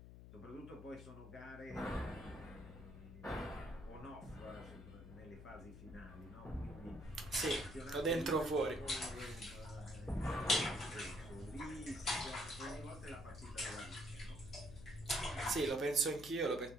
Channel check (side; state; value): left; noise; hum, 14 dB below the sound